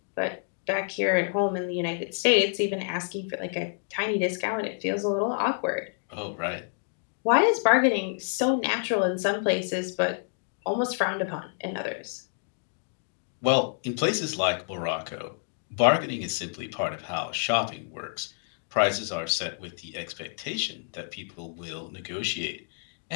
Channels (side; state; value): right; silent; digital silence